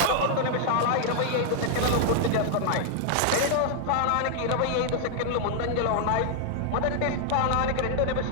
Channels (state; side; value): different; both; correlation -0.01